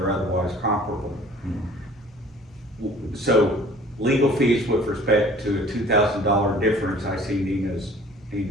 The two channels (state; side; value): normal; both; correlation 0.50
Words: are otherwise comparable. So legal fees with respect to a $2,000 difference, I see Nina's